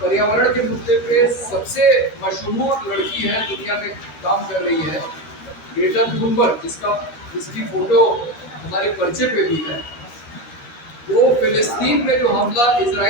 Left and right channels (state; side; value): late; right; 12 ms